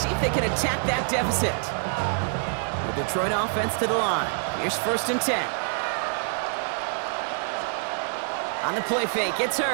if they can attack that deficit. The Detroit offense to the line. Here's 1st and 10. On the play fake, it's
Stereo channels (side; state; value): left; silent; digital silence